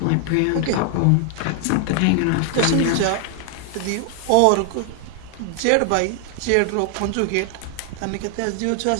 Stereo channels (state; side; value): different; both; correlation 0.00